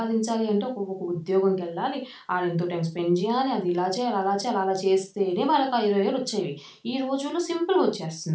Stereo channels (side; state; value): both; identical; correlation 1.00